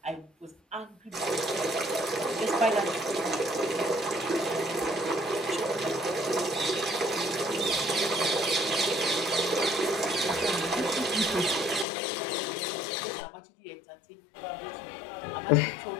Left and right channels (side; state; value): right; drops out; at 11.9 s